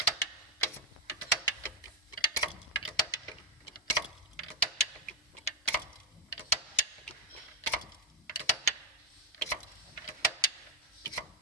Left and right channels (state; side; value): normal; both; correlation 0.04